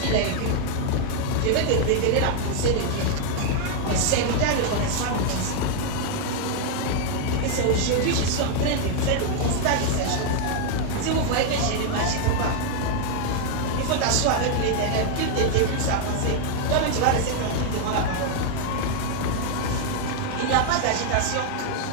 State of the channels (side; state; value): both; different; correlation 0.00